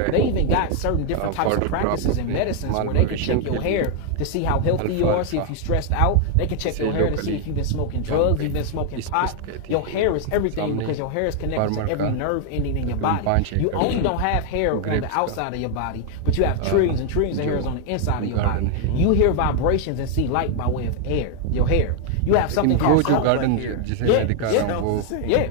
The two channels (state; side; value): different; both; correlation 0.00